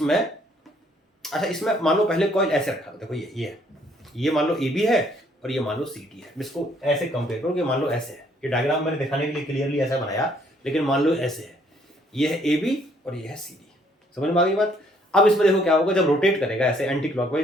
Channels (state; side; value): normal; both; correlation 0.65